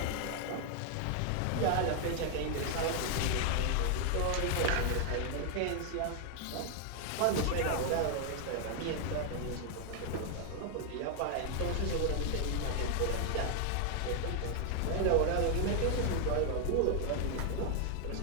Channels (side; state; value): both; different; correlation 0.00